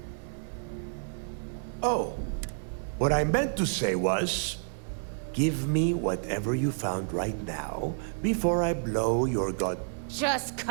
Oh, what I meant to say was, give me whatever you found right now before I blow your god. Just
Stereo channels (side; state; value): left; silent; 58 dB below the other